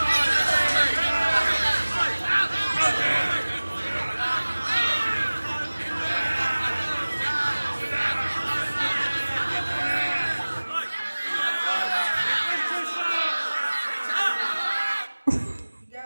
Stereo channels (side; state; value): both; inverted; correlation -1.00